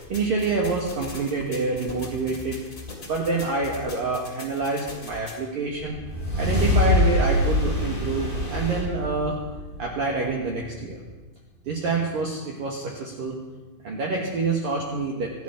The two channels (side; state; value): left; late; 2.5 ms